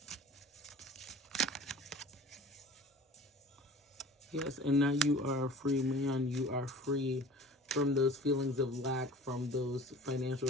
Yes, and now you are a free man. You are free from those feelings of lack, from those financial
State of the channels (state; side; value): normal; both; correlation 0.43